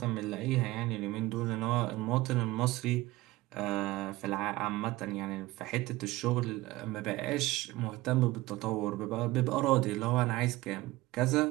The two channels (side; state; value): left; quieter; 18.7 dB